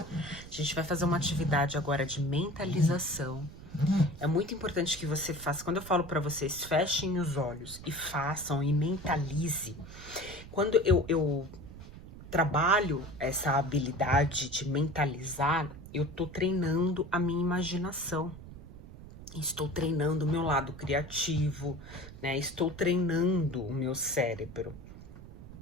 gente vai fazer uma atividade agora de mentalização. É muito importante que você faça. Quando eu falo para vocês, fechem os olhos e façam e mentalize. Quando eu trabalho essa habilidade de mentalizar, eu tô treinando a minha imaginação. Estou treinando o meu lado criativo, né? Estou treinando o meu cérebro.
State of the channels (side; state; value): right; noise; rumble, 15 dB below the sound